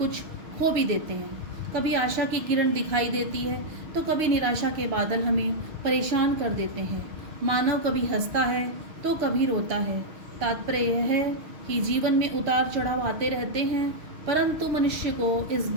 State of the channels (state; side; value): late; left; 6.5 ms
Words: खो भी देते हैं। कभी आशा की किरण दिखाई देती है तो कभी निराशा के बादल हमें परेशान कर देते हैं। मानव कभी हंसता है तो कभी रोता है। तात्पर्य यह है कि जीवन में उतार चढ़ाव आते रहते हैं, परंतु मनुष्य को इस